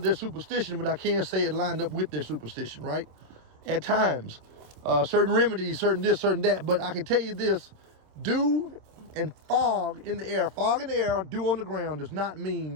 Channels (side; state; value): left; late; 26 ms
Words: their superstition, but I can say it lined up with their superstition, right? At times. Certain remedies, certain this, certain that. But I can tell you this, dew and fog in the air, dew on the ground does not